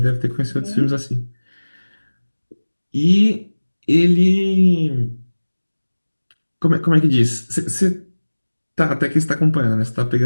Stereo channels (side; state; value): both; inverted; correlation -1.00